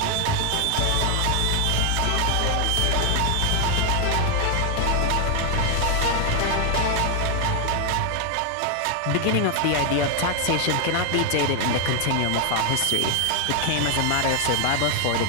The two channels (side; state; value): both; different; correlation 0.00